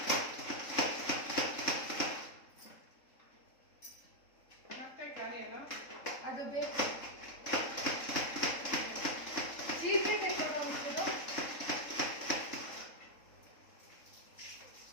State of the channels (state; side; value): late; right; 3.7 ms